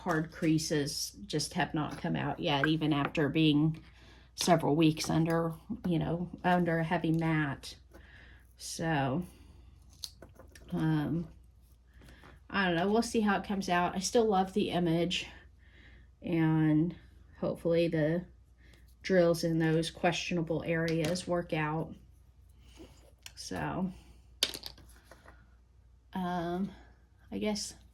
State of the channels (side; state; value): both; identical; correlation 1.00